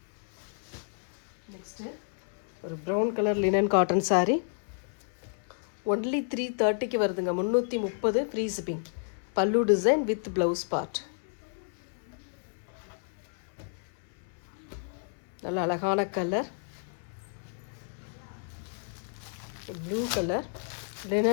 Next ஒரு brown colour linen cotton saree. Only 330க்கு வருதுங்க. 330 free shipping. Pallu design with blouse part. நல்ல அழகான கலர் ப்ளூ கலர்,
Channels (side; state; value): right; silent; 57 dB below the other